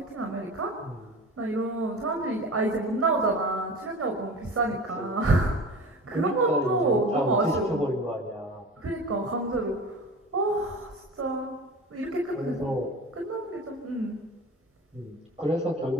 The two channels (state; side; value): normal; both; correlation 0.35